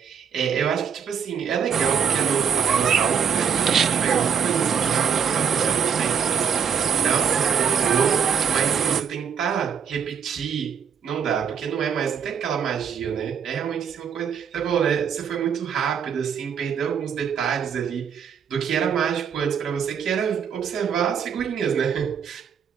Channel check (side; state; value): left; quieter; 7.3 dB